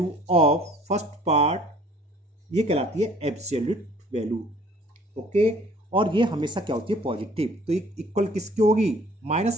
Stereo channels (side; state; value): both; normal; correlation 0.54